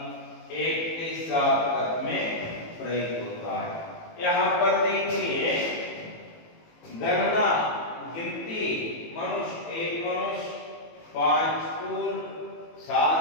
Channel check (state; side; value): late; right; 18 ms